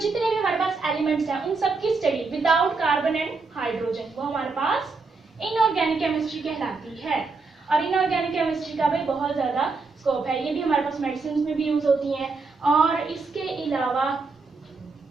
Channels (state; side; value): quieter; left; 4.1 dB